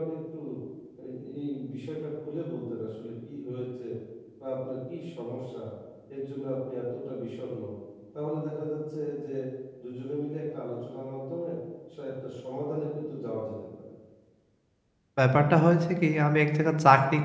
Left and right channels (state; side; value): identical; both; correlation 1.00